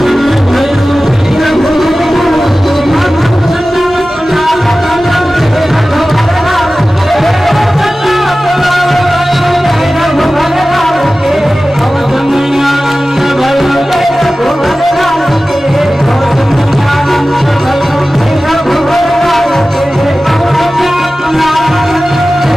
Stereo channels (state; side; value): normal; both; correlation 0.96